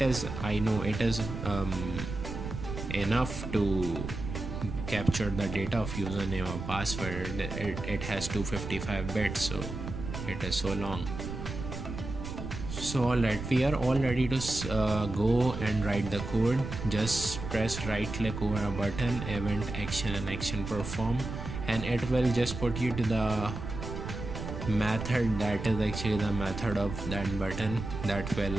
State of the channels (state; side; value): noise; right; rumble, 7 dB below the sound